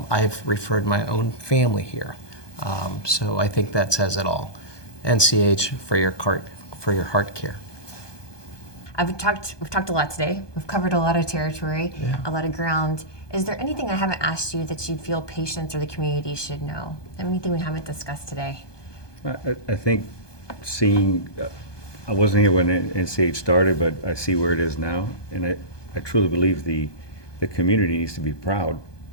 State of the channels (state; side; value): late; right; 1.2 ms